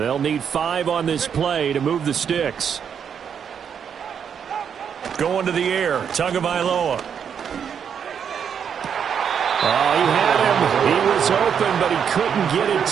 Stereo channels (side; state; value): left; quieter; 7.6 dB